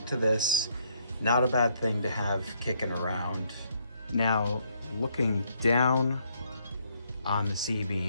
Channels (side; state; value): both; inverted; correlation -0.71